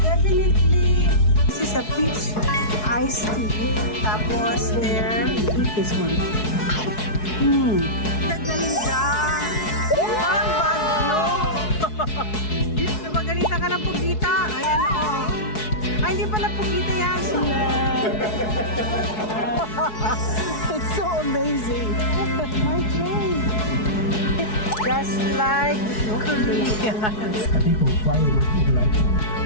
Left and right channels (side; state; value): right; late; 4.7 ms